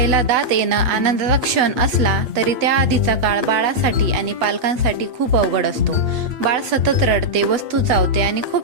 दात येणं आनंदाचा क्षण असला तरी त्या आधीचा काळ बाळासाठी आणि पालकांसाठी खूप अवघड असतो. बाळ सतत रडते, वस्तू चावते आणि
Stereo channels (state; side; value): late; left; 8.6 ms